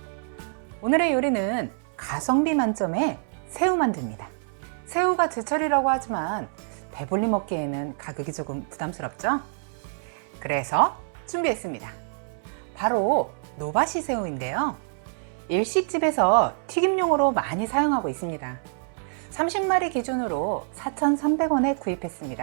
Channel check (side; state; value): left; silent; 60 dB below the other